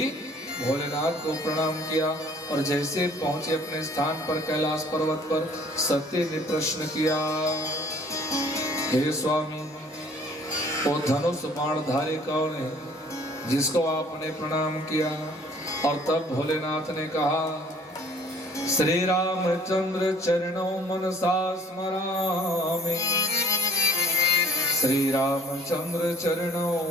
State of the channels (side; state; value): both; normal; correlation 0.55